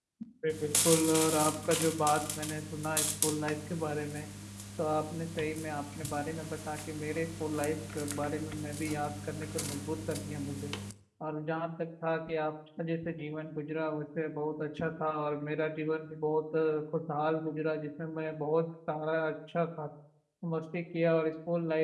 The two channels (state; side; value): identical; both; correlation 1.00